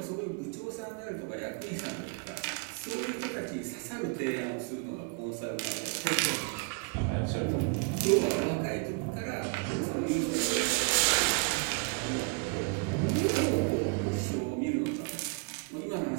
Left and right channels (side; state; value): left; quieter; 31.6 dB